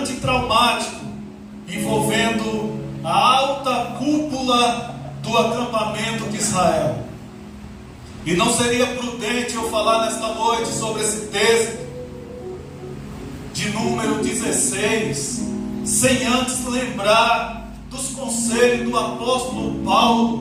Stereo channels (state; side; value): identical; both; correlation 1.00